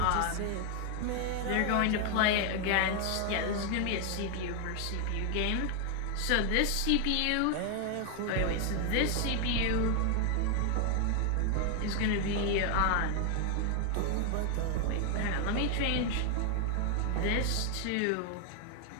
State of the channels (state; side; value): different; both; correlation 0.00